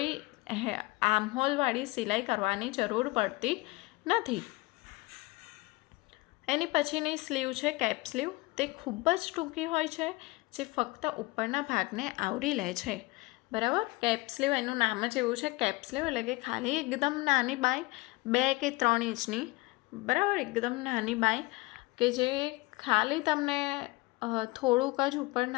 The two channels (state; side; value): quieter; right; 23.0 dB